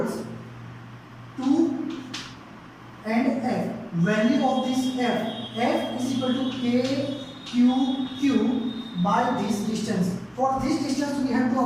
2 and F. Value of this F is equal to K Q Q by this distance. For this distance we have to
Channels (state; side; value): identical; both; correlation 1.00